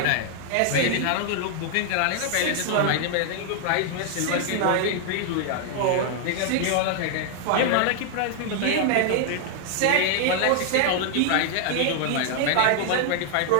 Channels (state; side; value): different; both; correlation 0.00